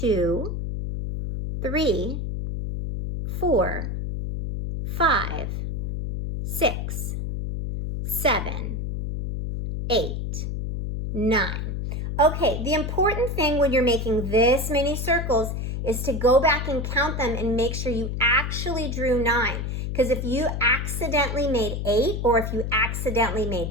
3, 4, 5, 6, 7, 8, 9. Okay, the important thing when you're making this many circles is to go back and count them and make sure you actually drew 9. Because if you accidentally made 8 or if you accidentally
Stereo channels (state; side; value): noise; left; hum, 3 dB below the sound